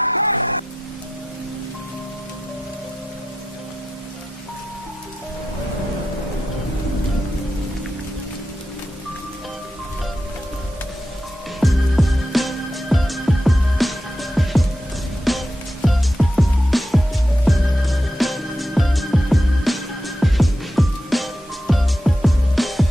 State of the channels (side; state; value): both; normal; correlation 0.88